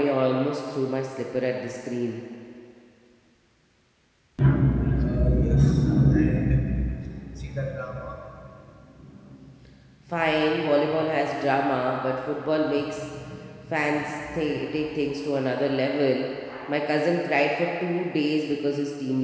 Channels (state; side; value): identical; both; correlation 1.00